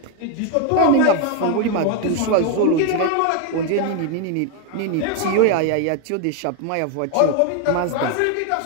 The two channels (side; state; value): both; different; correlation 0.01